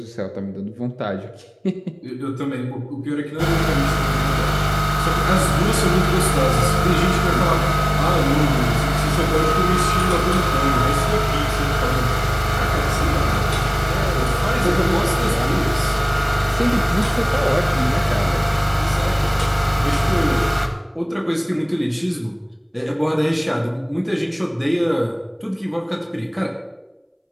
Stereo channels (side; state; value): both; identical; correlation 1.00